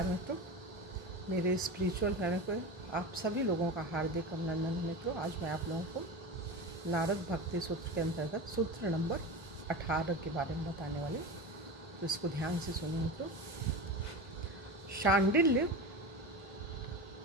मित्रों, मेरे स्पिरिचुअल चैनल पर आप सभी लोगों का हार्दिक अभिनंदन। मित्रों, आज मैं आप लोगों को नारद भक्ति सूत्र के अंतर्गत सूत्र नंबर 18 के बारे में बताने वाले, तो इसको ध्यान से सुनिए मित्रों। शांडिल्य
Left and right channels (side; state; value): both; normal; correlation 0.25